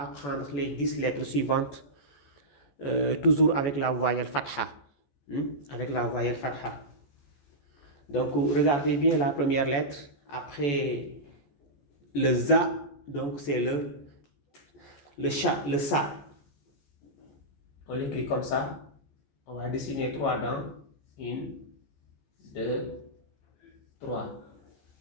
les 10 lettres suivantes, toujours avec la voyelle fatha. Avec la voyelle fatha. Donc regardez bien la première lettre, après le za, donc c'est le sa. On l'écrit comme ça. On va dessiner 3 dents. 1, 2, 3.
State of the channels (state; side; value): late; right; 14 ms